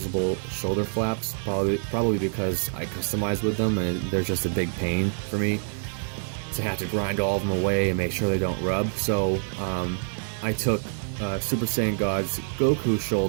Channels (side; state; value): left; silent; 61 dB below the other